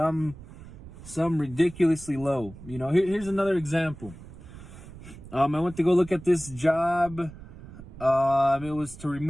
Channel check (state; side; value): noise; right; rumble, 16 dB below the sound